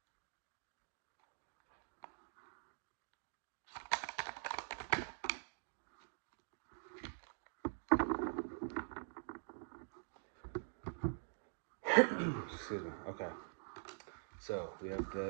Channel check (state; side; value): silent; left; digital silence